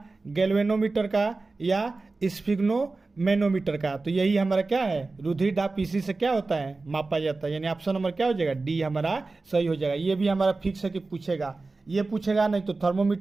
गैल्वेनोमीटर का या स्फिग्नोमेनोमीटर का। तो यही हमारा क्या है, रुधिर दाब इसी से क्या होता है, मापा जाता है, यानी ऑप्शन नंबर क्या हो जाएगा, डी हमारा सही हो जाएगा। ये भी हमारा फिक्स है कि पूछेगा, ये पूछेगा नहीं तो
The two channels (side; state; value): left; quieter; 3.6 dB